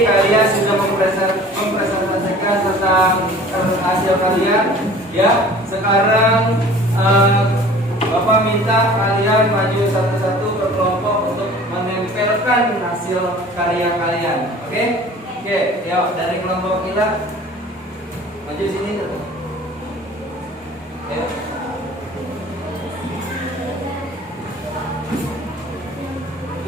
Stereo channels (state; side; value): normal; both; correlation 0.46